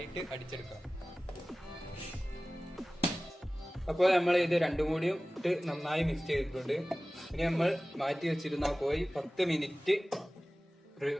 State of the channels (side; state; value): both; normal; correlation 0.97